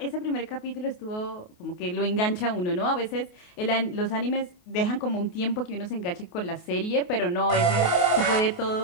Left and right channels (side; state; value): right; late; 28 ms